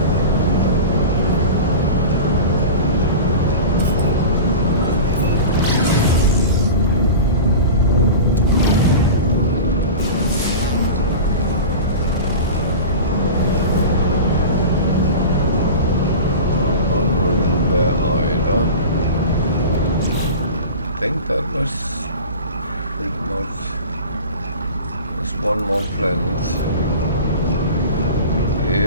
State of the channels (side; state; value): both; inverted; correlation -0.32